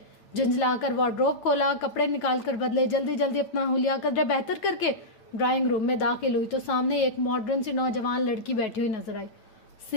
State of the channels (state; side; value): late; right; 8.8 ms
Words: جھنجھلا کر وارڈروب کھولا، کپڑے نکال کر بدلے، جلدی جلدی اپنا حلیہ قدرے بہتر کر کے ڈرائنگ روم میں داخل ہوئی تو سامنے ایک ماڈرن سی نوجوان لڑکی بیٹھی ہوئی نظر آئی۔